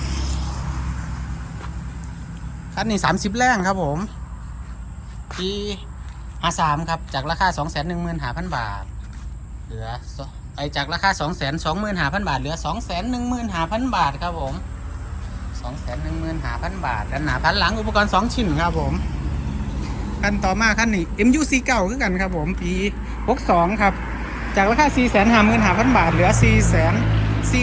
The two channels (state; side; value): identical; both; correlation 1.00